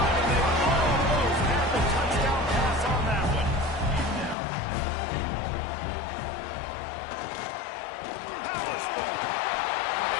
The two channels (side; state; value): right; drops out; at 4.4 s